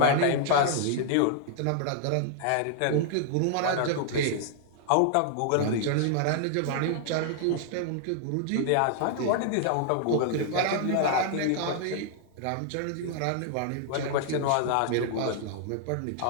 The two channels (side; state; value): both; different; correlation 0.00